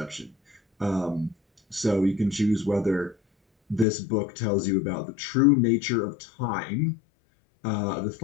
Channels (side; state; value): right; drops out; at 3.9 s